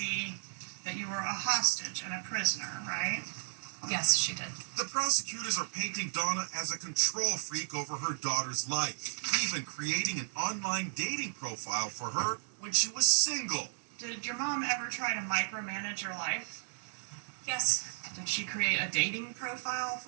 that you were a hostage and a prisoner, right? Yes, she did. The prosecutors are painting Donna as a control freak over her daughter's life, even creating an online dating profile for her when she was single. Did your mom ever try to micromanage your life? Yes. Did she create a dating profile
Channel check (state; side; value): silent; left; digital silence